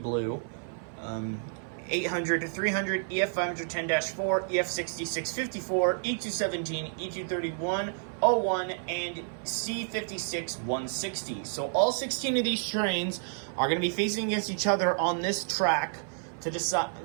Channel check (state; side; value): silent; left; 55 dB below the other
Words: 800 to 300, EF510-4, EF6654, E217, E231, 01, and C56 160. So all 16 of these trains are going to be facing against each other on this track to decide,